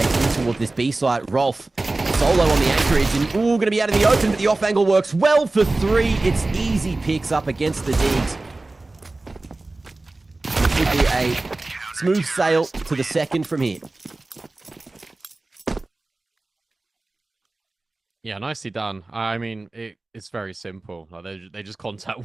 in towards this B site. Rolf, solo on the anchorage, and ooh, going to be out in the open, but the off angle works well for 3. It's easy picks up against the Deags. It should be a smooth sail to the second from here. Yeah, nicely done. I mean, it's very simple. Like they just contact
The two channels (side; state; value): left; quieter; 3.1 dB